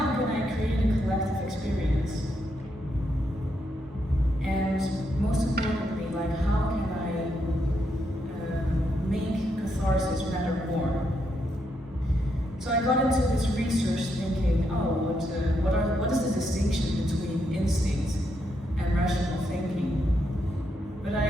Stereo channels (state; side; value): normal; both; correlation 0.79